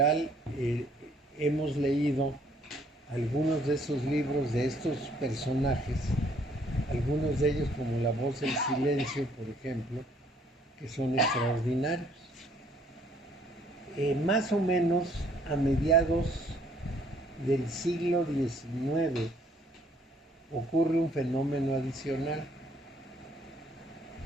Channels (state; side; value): normal; both; correlation 0.63